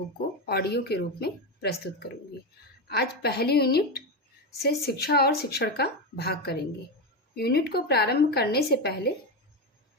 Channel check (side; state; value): both; normal; correlation 0.13